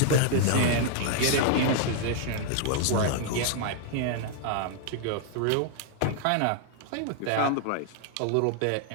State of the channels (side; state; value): both; different; correlation 0.00